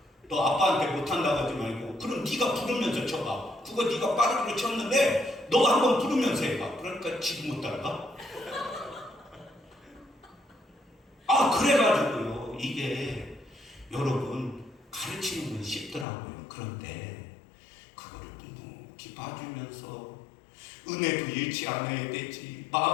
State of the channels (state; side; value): drops out; right; at 16.1 s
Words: 너 아빠한테 못한다고 하지 말고 그럼 네가 부르면서 쳐봐. 그거 네가 빠르게 쳤는데 너 한번 부르면서 해봐. 그러니까 지금 못 따라가? 그래가지고요. 이게 여러분 가르치는 건 쉽더라고요. 그런데 그거를 묵묵히 봐주면서 은혜도 잃지 않아야 되지.